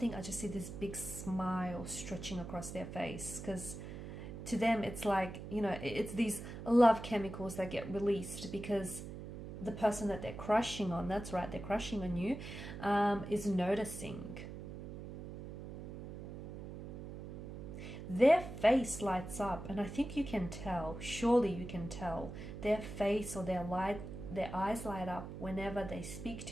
I just see this big smile stretching across their face, because to them it's like, you know, it's these love chemicals that get released because the person that they're crushing on, that's right, they're crushing on you, is noticing. Their face lights up, and I think you can tell, surely you can tell, their face or their eyes light up whenever they speak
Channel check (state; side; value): noise; right; hum, 10 dB below the sound